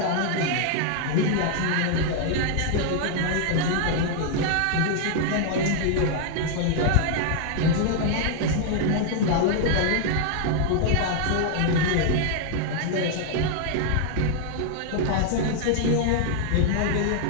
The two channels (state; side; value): different; both; correlation 0.00